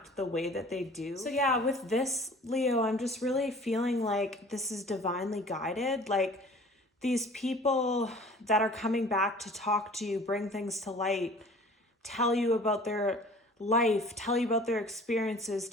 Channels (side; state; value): both; normal; correlation 0.47